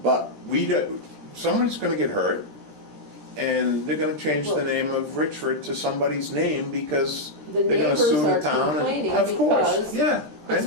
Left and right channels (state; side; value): late; left; 13 ms